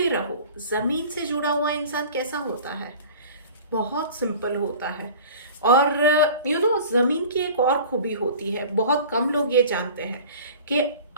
रहो। जमीन से जुड़ा हुआ इंसान कैसा होता है? बहुत सिंपल होता है। और जमीन की एक और खूबी होती है, बहुत कम लोग ये जानते हैं कि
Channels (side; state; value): both; inverted; correlation -0.41